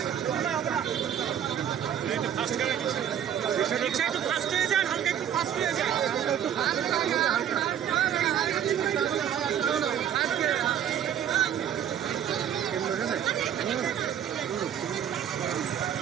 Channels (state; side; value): quieter; left; 9.5 dB